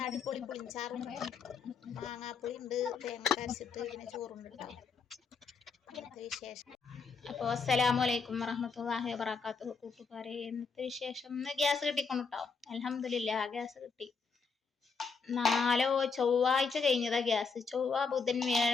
അടിപൊളി പുളിഞ്ചാറും മാങ്ങാപ്പുളി ഉണ്ട്, തേങ്ങ അരച്ചിട്ട് പിന്നെ ചോറുണ്ട് കേട്ടോ. ഇന്നത്തെ വിശേഷം. അപ്പോൾ അസ്സലാമു അലൈക്കും വറഹ്മത്തുള്ളാഹി വബറകാതുഹു. കൂട്ടുകാരെ, ഇന്നത്തെ വിശേഷം ഇന്ന് ഗ്യാസ് കിട്ടിക്കൊണ്ടു കേട്ടോ. അൽഹംദുലില്ലാ ഗ്യാസ് കിട്ടി. ചൊവ്വാഴ്ച കഴിഞ്ഞതാ ഗ്യാസ്. ചൊവ്വ ബുധൻ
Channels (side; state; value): right; quieter; 5.1 dB